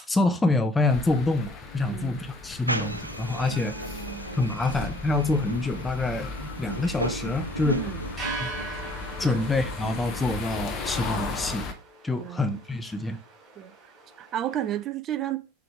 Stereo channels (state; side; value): normal; both; correlation 0.58